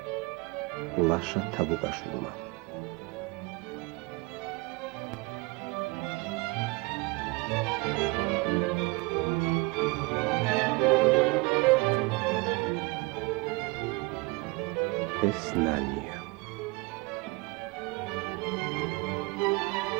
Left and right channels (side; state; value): left; quieter; 25.8 dB